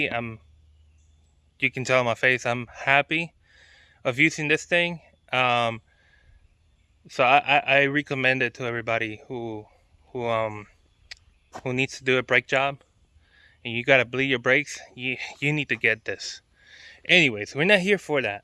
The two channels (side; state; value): both; identical; correlation 1.00